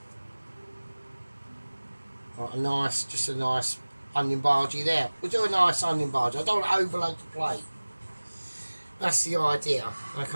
Right, just a nice onion bargee there. We'll do a nice onion barge. I don't want to overload the plate. That's the idea,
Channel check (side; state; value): both; inverted; correlation -1.00